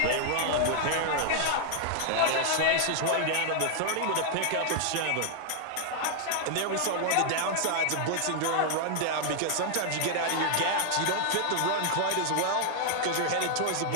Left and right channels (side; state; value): both; different; correlation 0.00